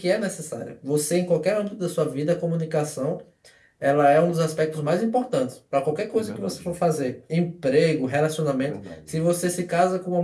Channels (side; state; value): both; identical; correlation 1.00